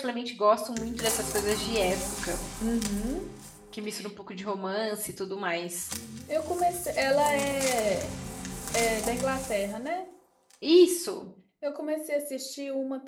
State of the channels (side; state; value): both; identical; correlation 1.00